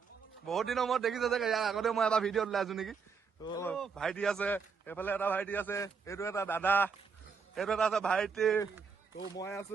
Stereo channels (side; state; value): left; quieter; 5.7 dB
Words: বহুত দিনৰ মূৰত দেখিছে চাগে, ইয়াৰ আগতে মই এবাৰ ভিডিঅ'ত ওলাইছো নেকি। তো ভাইটি আছে, এইফালে এটা ভাইটি আছে, এইটো এটা দাদা, এইটো এটা আছে ভাইটি, তো মই